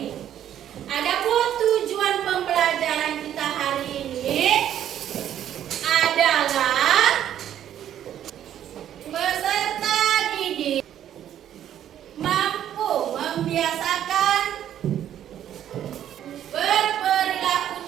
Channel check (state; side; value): quieter; left; 10.7 dB